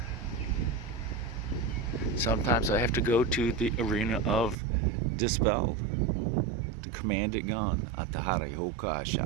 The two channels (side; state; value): left; drops out; at 4.5 s